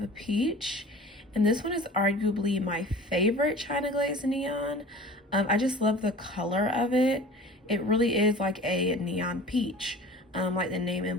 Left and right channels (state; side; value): normal; both; correlation 0.41